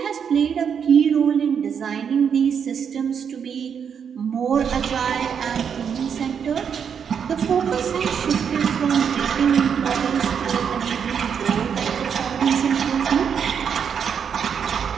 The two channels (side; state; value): left; quieter; 7.3 dB